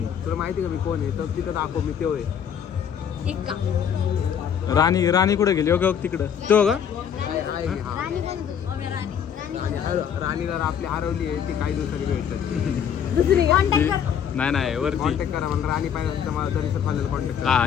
तुला माहिती का मी कोण आहे? तर तिथं दाखव मी तेव्हा आहे. एक का राणी कुठे गेली? ओके तिकडं तो का? राणी पण राणीला आपली हरवली आहे. ती काही दिवसांनी भेटतात. दुसरी कॉन्टॅक्ट कर. नाही वरती कॉन्टॅक्ट करा. मला राणी पाहिजे तर मला तरी फायनल कॉन्टॅक्ट करा. हा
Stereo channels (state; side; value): quieter; right; 8.3 dB